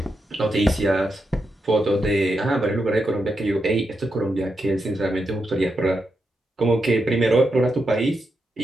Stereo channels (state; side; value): normal; both; correlation 0.85